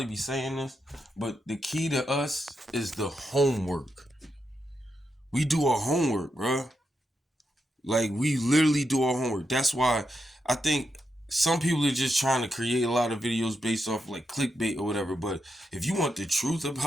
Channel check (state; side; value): normal; both; correlation 0.84